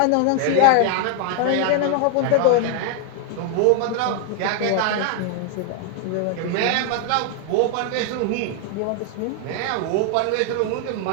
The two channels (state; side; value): different; both; correlation 0.00